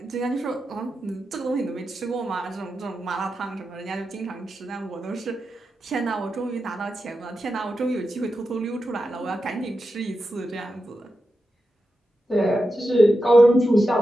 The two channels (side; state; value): both; normal; correlation 0.89